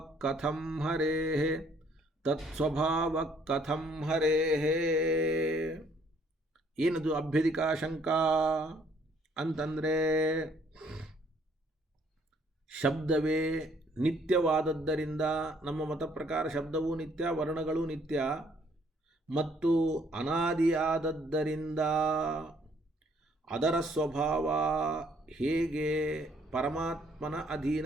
ಕಥಂ ಹರೇಃ. ಏನದು ಅಭ್ಯಧಿಕಾಶಂಕ ಅಂತಂದರೆ, ಶಬ್ದವೇ ನಿತ್ಯವಾದದ್ದರಿಂದ, ನಮ್ಮ ಮತ ಪ್ರಕಾರ ಶಬ್ದವೂ ನಿತ್ಯ, ವರ್ಣಗಳು ನಿತ್ಯ ಮತ್ತು ಅನಾದಿಯಾದದ್ದರಿಂದ ಅದರ ಸ್ವಭಾವ ಹೇಗೆ ಪರಮಾತ್ಮನ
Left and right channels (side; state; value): both; normal; correlation 0.64